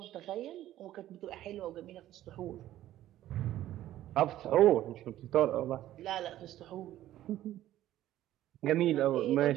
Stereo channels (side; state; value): left; quieter; 13.5 dB